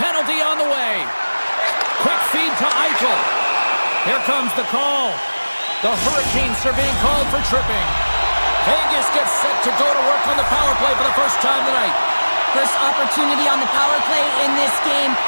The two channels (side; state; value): both; inverted; correlation -1.00